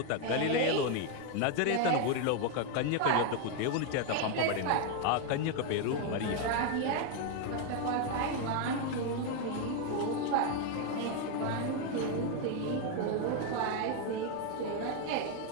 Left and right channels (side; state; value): both; different; correlation 0.01